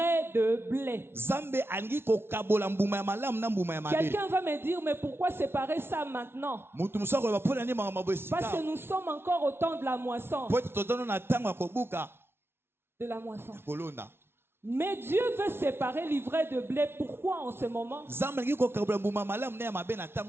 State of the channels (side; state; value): left; late; 0.12 ms